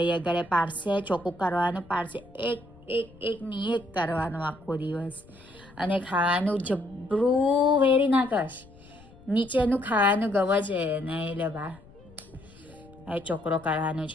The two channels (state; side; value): noise; left; rumble, 23 dB below the sound